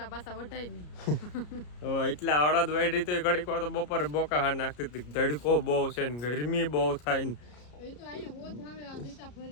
પાછા વઢાય નહીં. એટલા અડદ વાઢી તો ઘડીક વાર તો બપોરે બોકા હા નાખતી હતી. ધડકો બહુ છે ને ગરમી બહુ થાય ને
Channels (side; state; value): right; late; 33 ms